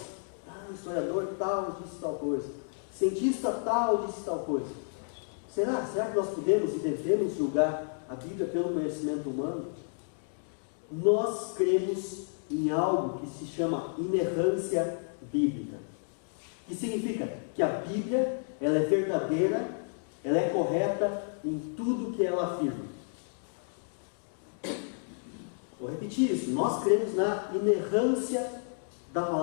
o historiador tal disse tal coisa, cientista tal disse tal coisa. Será que nós podemos e devemos julgar a Bíblia pelo conhecimento humano? Nós cremos em algo que se chama inerrância bíblica, que significa que a Bíblia, ela é verdadeira, ela é correta em tudo que ela afirma. Vou repetir isso, nós cremos na inerrância da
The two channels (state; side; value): silent; right; digital silence